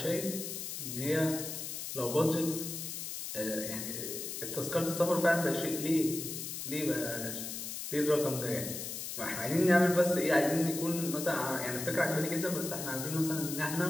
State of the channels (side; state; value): left; noise; hiss, 6 dB below the sound